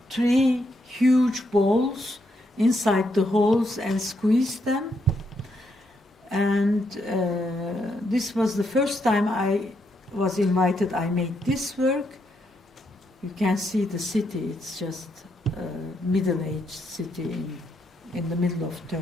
3 huge balls inside the holes and squeezed them. And this was the first time I was invited. I made this work. You can see the city. It's just a middle-aged city in the middle of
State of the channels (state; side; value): normal; both; correlation 0.78